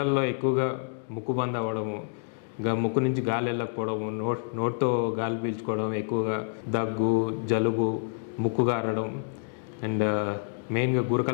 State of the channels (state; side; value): silent; right; digital silence